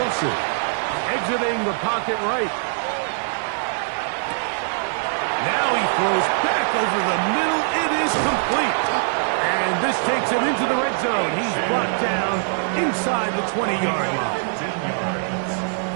Exiting the pocket right. throws back over the middle. It is complete. And this takes him into the red zone. He's brought down inside the 20-yard line.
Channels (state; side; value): silent; left; 64 dB below the other